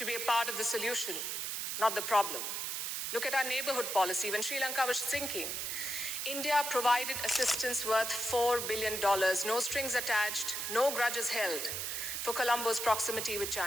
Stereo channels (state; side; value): noise; right; hiss, 3 dB below the sound